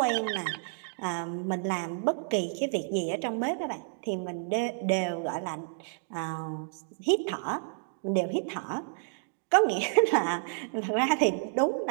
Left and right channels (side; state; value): left; silent; digital silence